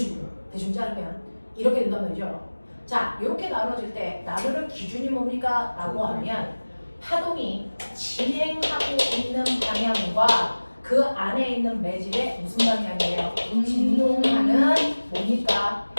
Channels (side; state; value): both; inverted; correlation -1.00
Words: 대충 자르면 이렇게 된단 말이죠. 자, 이렇게 나눠질 때 나누는 기준이 뭡니까? 라고 하면 파동이 진행하고 있는 방향과 그 안에 있는 매질의 무슨 방향이에요? 진동하는 뭡니까?